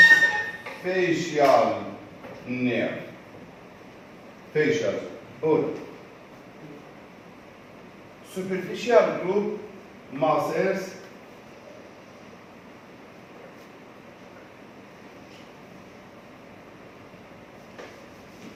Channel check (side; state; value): both; identical; correlation 1.00